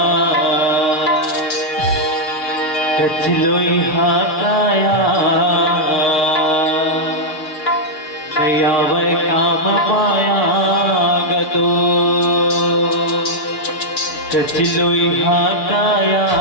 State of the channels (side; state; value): right; late; 6.4 ms